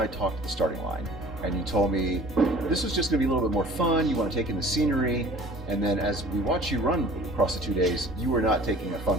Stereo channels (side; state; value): both; normal; correlation 0.47